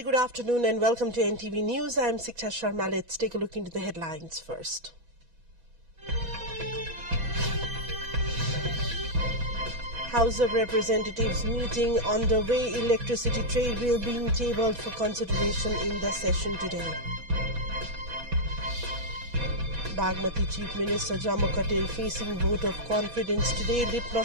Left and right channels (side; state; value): left; late; 6.1 ms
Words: very good afternoon and welcome to NTV News. I am Siksha Sharma. Let's take a look into the headlines first. House of Representatives meeting underway. Electricity trade bill being tabled for consideration in the session today. Bagmati Chief Minister Jammu Patel facing vote of confidence today.